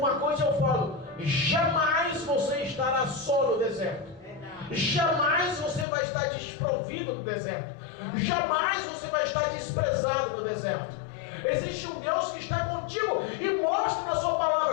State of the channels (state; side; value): drops out; right; at 5.9 s